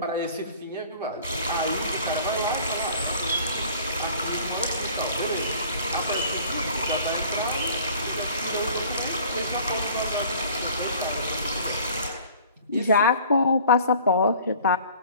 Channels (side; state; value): both; inverted; correlation -0.49